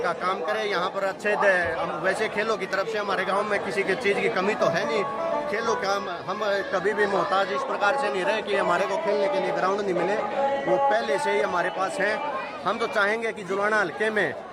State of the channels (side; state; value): both; identical; correlation 1.00